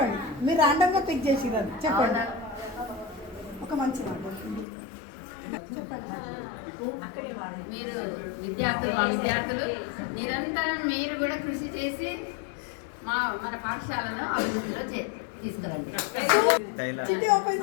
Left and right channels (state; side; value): drops out; right; at 4.7 s